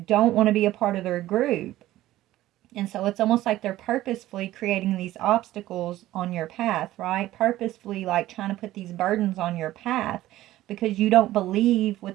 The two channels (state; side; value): quieter; left; 15.2 dB